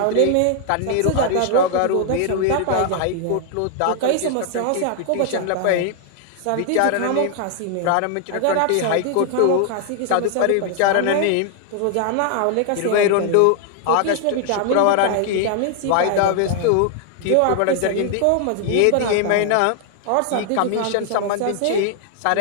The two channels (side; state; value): both; different; correlation 0.00